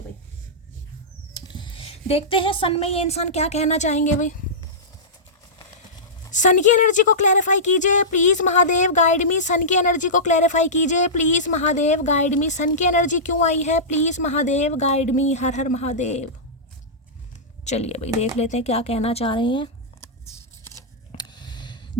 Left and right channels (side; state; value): both; normal; correlation -0.15